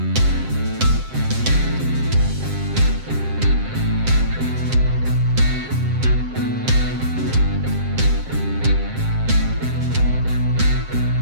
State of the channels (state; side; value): late; left; 7.6 ms